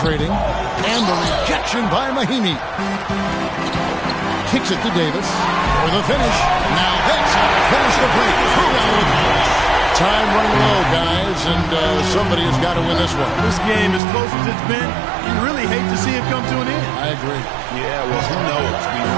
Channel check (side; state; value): left; drops out; at 14.0 s